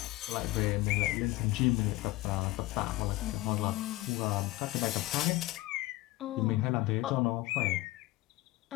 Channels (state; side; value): quieter; right; 19.1 dB